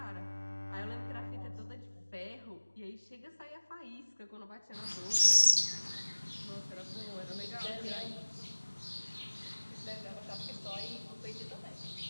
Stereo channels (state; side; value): inverted; both; correlation -1.00